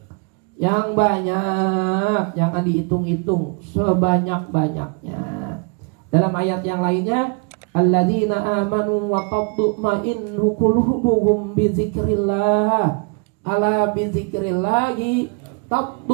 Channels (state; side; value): quieter; left; 34.4 dB